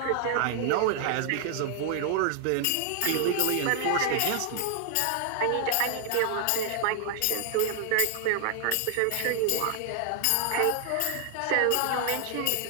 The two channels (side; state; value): both; different; correlation 0.00